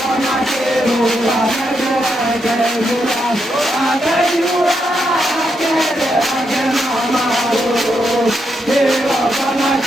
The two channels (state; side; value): normal; both; correlation 0.81